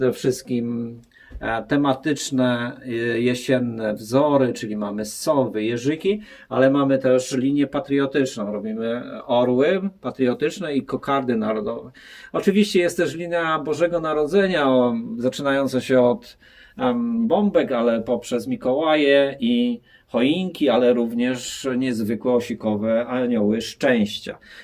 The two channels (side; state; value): both; identical; correlation 1.00